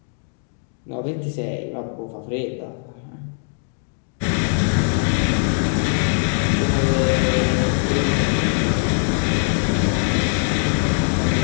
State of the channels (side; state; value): right; silent; digital silence